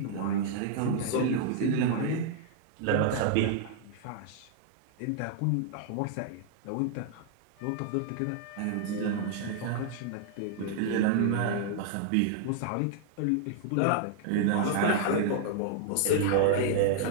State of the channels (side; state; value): both; different; correlation -0.01